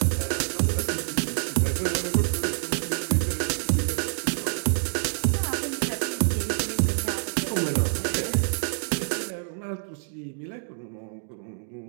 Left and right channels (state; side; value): silent; left; digital silence